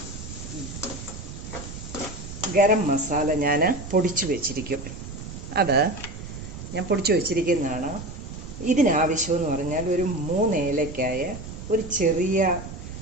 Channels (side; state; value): right; noise; rumble, 11 dB below the sound